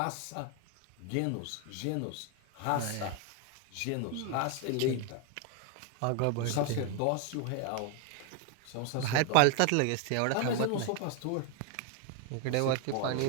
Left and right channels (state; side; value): different; both; correlation 0.01